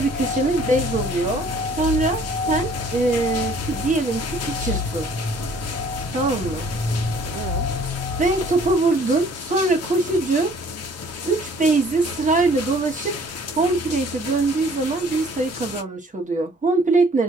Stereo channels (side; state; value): both; normal; correlation 0.56